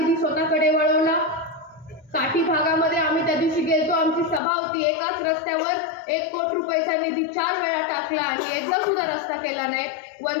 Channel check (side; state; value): right; drops out; at 4.4 s